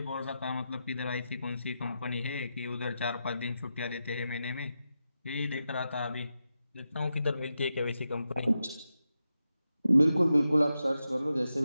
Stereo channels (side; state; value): both; inverted; correlation -0.89